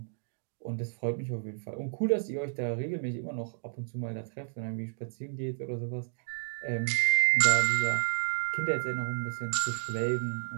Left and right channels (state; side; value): silent; left; digital silence